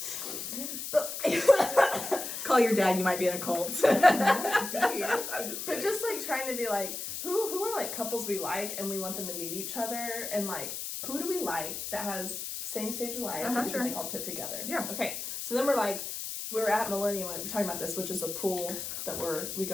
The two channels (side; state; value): left; noise; hiss, 6 dB below the sound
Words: Call your dad, you might be in a cult. But just like trying to be like, who are like couples we like and we want them to meet each other, and like, who do we like that has same stage of life that we can like all put together? Yeah. Okay. So then we're at Millennium, we're talking about this, which is a pool that we